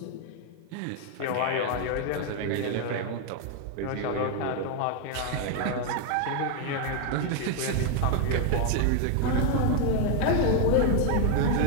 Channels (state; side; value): different; both; correlation 0.01